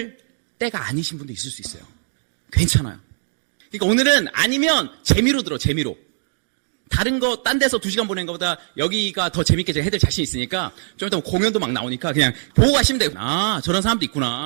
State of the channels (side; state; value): left; silent; digital silence